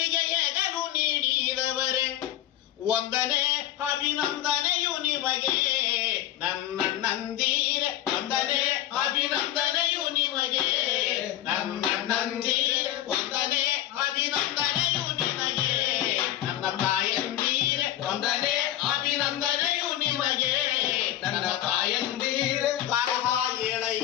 ಎಗಲು ನೀಡಿದವರೇ, ಒಂದನೇ ಅಭಿನಂದನೆಯು ನಿಮಗೆ ನನ್ನಣ್ಣಂದಿರೆ, ಒಂದನೇ ಅಭಿನಂದನೆಯು ನಿಮಗೆ ನನ್ನಣ್ಣಂದಿರೆ, ಒಂದನೇ ಅಭಿನಂದನೆಯು ನಿಮಗೆ ನನ್ನ ತಾಯಂದಿರೆ, ಒಂದನೇ ಅಭಿನಂದನೆಯು ನಿಮಗೆ ನನ್ನ ತಾಯಂದಿರೆ. ಬರಹ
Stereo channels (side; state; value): right; quieter; 13.0 dB